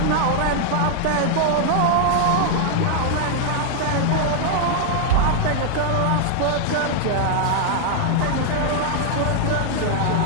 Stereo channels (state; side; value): different; both; correlation 0.00